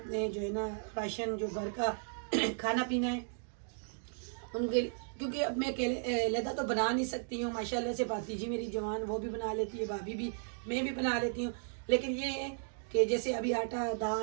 जो है ना राशन जो घर का खाना पीना है उनके, क्योंकि अब मैं लहदा तो बना नहीं सकती हूँ। माशाल्लाह से भातीजी मेरी जवान वो भी बना लेती है, भाभी भी, मैं भी बना लेती हूँ। लेकिन ये है कि जैसे अभी आटा,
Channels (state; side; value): silent; left; digital silence